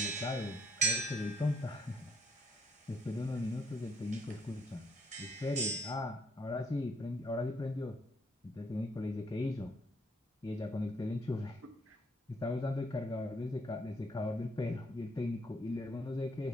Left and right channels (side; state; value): both; normal; correlation 0.69